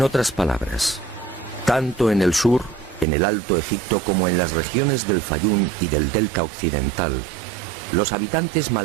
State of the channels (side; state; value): left; drops out; at 3.1 s